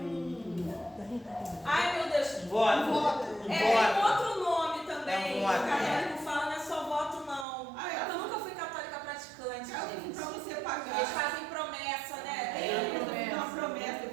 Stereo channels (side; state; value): left; drops out; at 7.5 s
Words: Ai, meu Deus. Voto. Tem outro nome também. É O voto. católico fala, não é só voto, não. Ah, é? Eu nunca fui católica praticante, para gente. você pagar. Eles fazem promessa, né? Eu